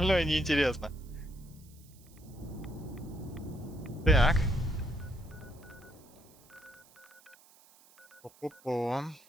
неинтересно. Так. Пу-пу-пу.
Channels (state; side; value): noise; right; hiss, 26 dB below the sound